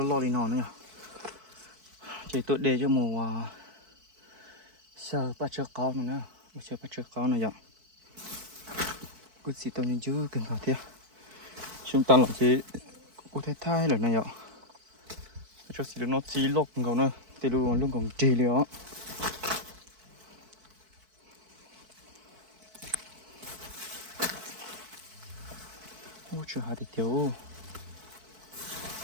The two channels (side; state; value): left; late; 4.6 ms